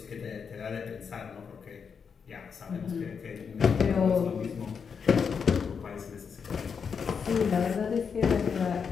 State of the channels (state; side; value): quieter; right; 6.3 dB